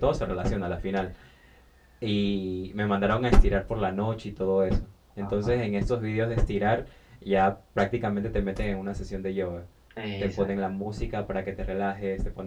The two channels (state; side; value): identical; both; correlation 1.00